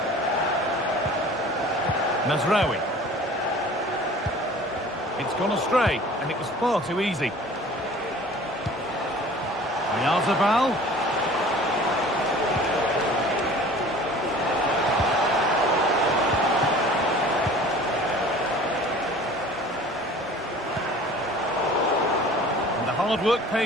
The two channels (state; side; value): normal; both; correlation 0.45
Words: Mazraoui. It's gone astray, and it was far too easy. Oyarzabal. And the hard work